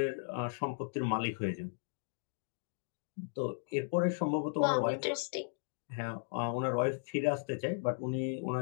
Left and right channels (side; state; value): right; silent; digital silence